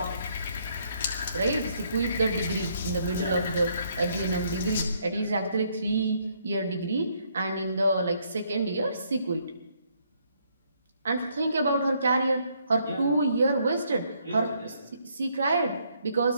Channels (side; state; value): both; inverted; correlation -0.70